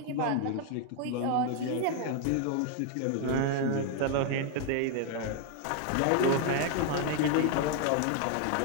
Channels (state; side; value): different; both; correlation 0.00